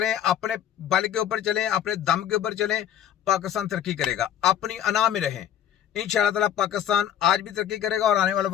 अपने बल के ऊपर चलें, अपने दम के ऊपर चलें, पाकिस्तान तरक्की करेगा। अपनी अना में रहें, इंशाअल्लाह ताला पाकिस्तान आज भी तरक्की करेगा और आने वाला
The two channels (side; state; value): right; quieter; 10.3 dB